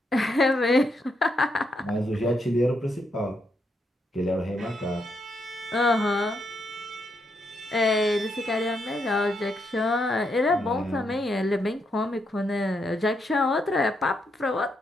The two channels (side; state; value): both; normal; correlation 0.79